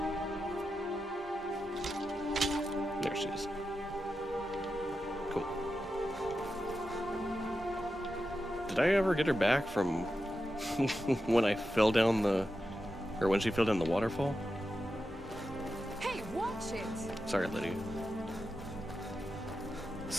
There she is. Cool. Did I ever get her back from when I fell down the... or when she fell down the waterfall? Hey, watch it! Sorry, Lydia.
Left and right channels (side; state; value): both; normal; correlation 0.90